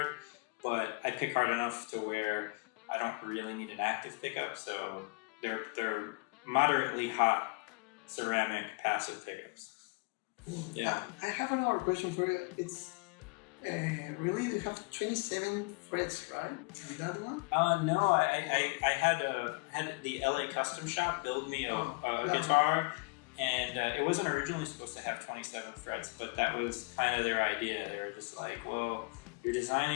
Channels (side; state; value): right; quieter; 30.0 dB